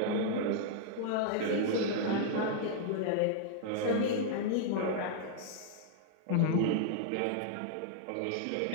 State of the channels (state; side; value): different; both; correlation -0.01